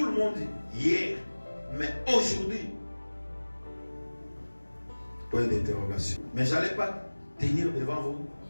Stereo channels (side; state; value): both; inverted; correlation -1.00